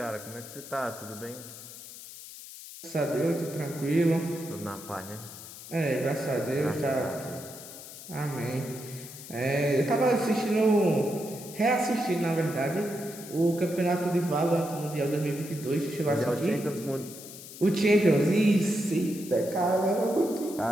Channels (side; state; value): left; noise; hiss, 14 dB below the sound